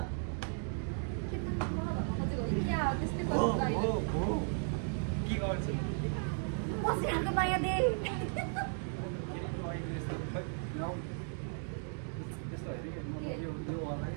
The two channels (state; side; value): silent; left; 54 dB below the other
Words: के गर्छु पसिनाको माया दे